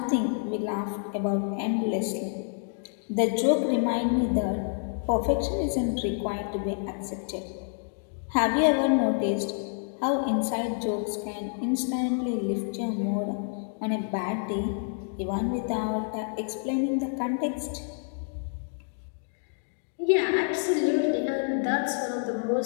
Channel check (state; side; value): silent; right; 59 dB below the other